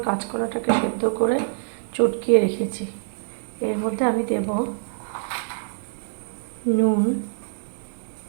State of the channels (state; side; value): silent; left; digital silence